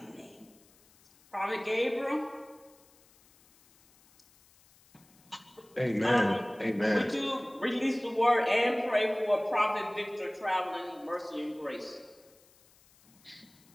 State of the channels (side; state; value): left; noise; hiss, 29 dB below the sound